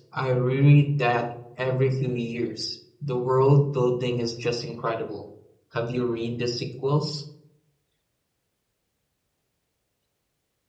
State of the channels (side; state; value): both; identical; correlation 1.00